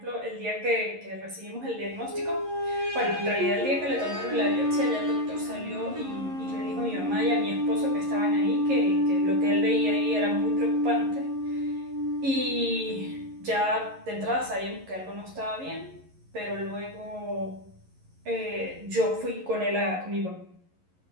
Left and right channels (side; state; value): left; late; 11 ms